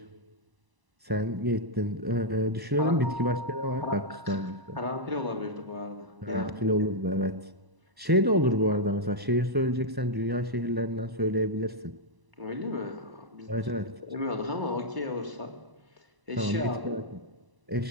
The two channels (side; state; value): left; late; 1.0 ms